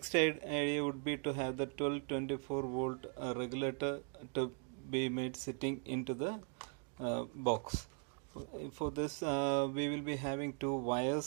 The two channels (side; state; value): left; quieter; 39.8 dB